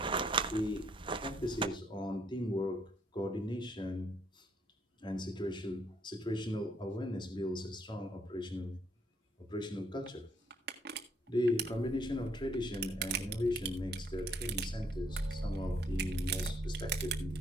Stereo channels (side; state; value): both; normal; correlation 0.69